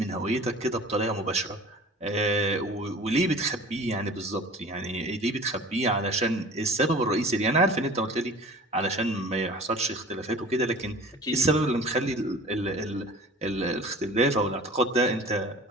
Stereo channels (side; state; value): both; normal; correlation 0.43